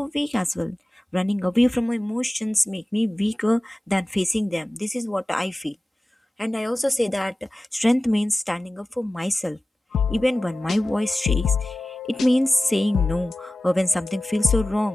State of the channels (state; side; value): normal; both; correlation 0.96